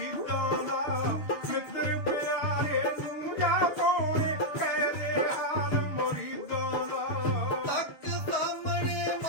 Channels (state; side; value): late; right; 6.7 ms